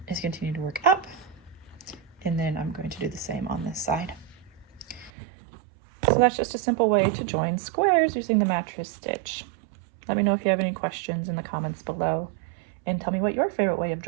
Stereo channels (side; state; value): left; drops out; at 5.1 s